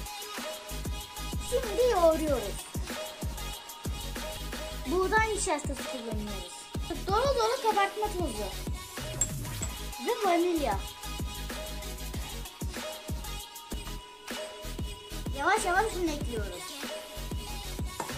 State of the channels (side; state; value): both; identical; correlation 1.00